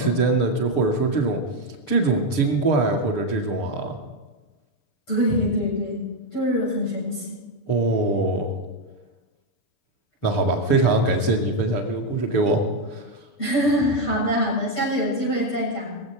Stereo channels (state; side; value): late; right; 6.8 ms